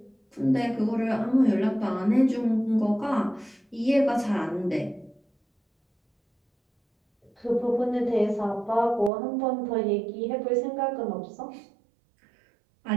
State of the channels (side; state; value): left; drops out; at 9.1 s